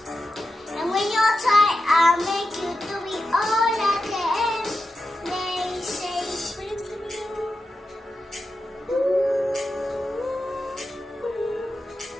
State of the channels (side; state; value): both; normal; correlation 0.90